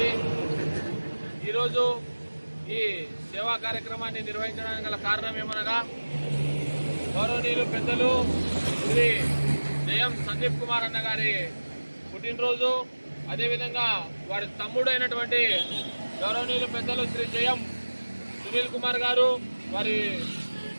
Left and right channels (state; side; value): inverted; both; correlation -1.00